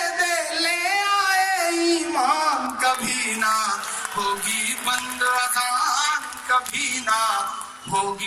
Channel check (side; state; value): both; identical; correlation 1.00